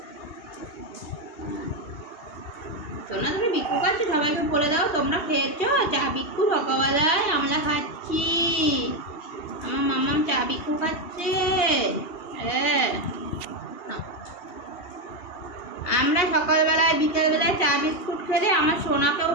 সোনা তুমি বিক্কু খাচ্ছি, সবাইকে বলে দাও তোমরা খেয়েছো চা বিক্কু সকালবেলায়? আমরা খাচ্ছি, আমার মাম্মাম চা বিক্কু খাচ্ছে। হ্যাঁ, আমরা সকালবেলায় বিকেলবেলায় চা বিস্কুট খেলে আমার সোনাকেও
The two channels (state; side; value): late; right; 2.8 ms